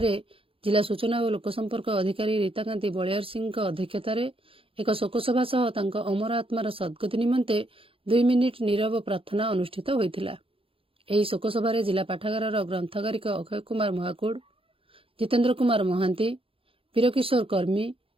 ଜିଲ୍ଲା ସୂଚନା ଓ ଲୋକସମ୍ପର୍କ ଅଧିକାରୀ ରୀତାକାନ୍ତି ବଳିଆର ସିଂଙ୍କ ଅଧ୍ୟକ୍ଷତାରେ ଏକ ଶୋକସଭା ସହ ତାଙ୍କ ଅମର ଆତ୍ମାର ସଦ୍ଗତି ନିମନ୍ତେ 2 ମିନିଟ୍ ନୀରବ ପ୍ରାର୍ଥନା ଅନୁଷ୍ଠିତ ହୋଇଥିଲା। ଏହି ଶୋକସଭାରେ ଜିଲ୍ଲା ପାଠାଗାରର ଗ୍ରନ୍ଥଗାରିକ ଅକ୍ଷୟ କୁମାର ମହାକୁଡ଼, ଜିତେନ୍ଦ୍ର କୁମାର ମହାନ୍ତି, ବୀରକିଶୋର କର୍ମୀ,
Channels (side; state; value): left; late; 0.27 ms